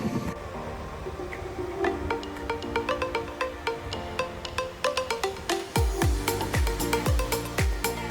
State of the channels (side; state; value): both; identical; correlation 1.00